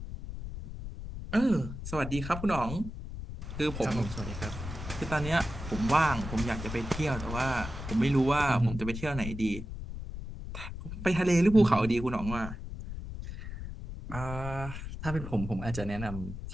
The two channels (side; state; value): left; noise; rumble, 8 dB below the sound